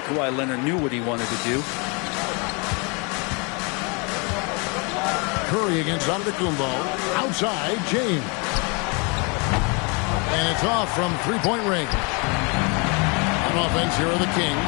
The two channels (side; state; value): right; quieter; 31.8 dB